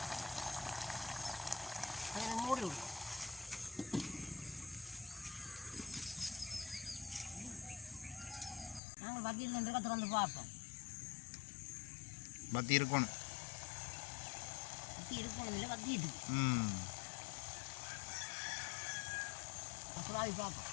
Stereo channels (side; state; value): right; drops out; at 8.8 s